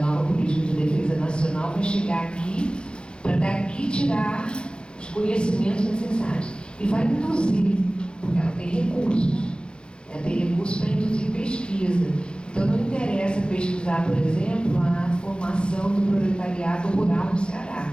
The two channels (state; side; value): late; right; 0.052 ms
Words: política de defesa nacional vai chegar aqui para daqui tirar os conhecimentos necessários. E vai induzir, porque ela tem recursos. Ela tem recursos para induzir pesquisa. Então não interessa pesquisar, por exemplo, a formação do proletariado rural no Ceará.